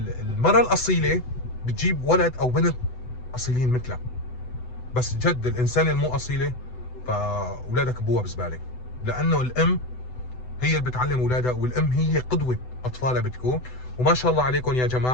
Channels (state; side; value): late; right; 8.0 ms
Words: الاصيله بتجيب ولد او بنت اصيلين مثلها، بس جد الانسان المو اصيله فاولادك ابوها بزباله، لانه الام هي اللي بتعلم اولادها، والام هي قدوه اطفالها بتكون. وما شاء الله عليكم يا